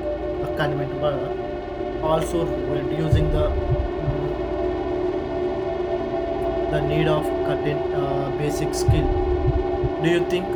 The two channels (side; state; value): both; identical; correlation 1.00